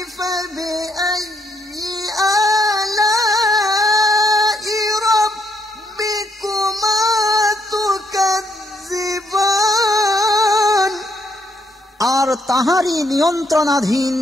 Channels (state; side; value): normal; both; correlation 0.74